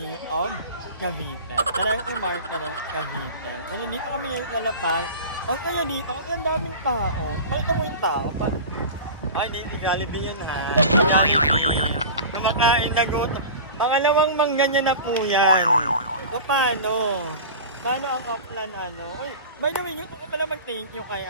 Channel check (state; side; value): inverted; both; correlation -0.33